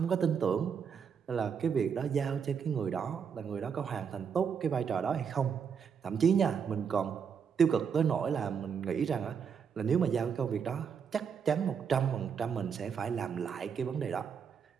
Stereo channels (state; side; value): quieter; left; 6.9 dB